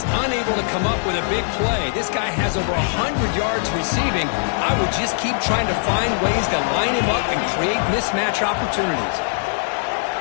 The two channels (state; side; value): silent; right; digital silence